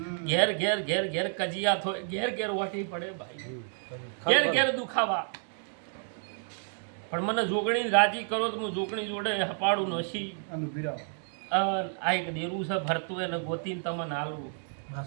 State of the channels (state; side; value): silent; left; 58 dB below the other